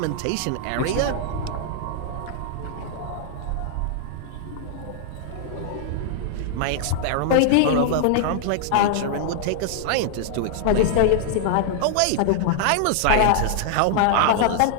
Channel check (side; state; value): both; different; correlation -0.01